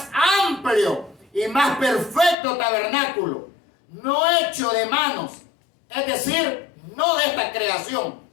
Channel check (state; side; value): drops out; right; at 2.4 s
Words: amplio y más perfecto tabernáculo, no hecho de manos, es decir, no de esta creación,